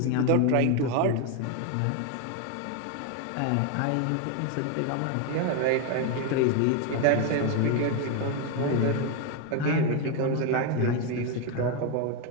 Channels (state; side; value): different; both; correlation 0.02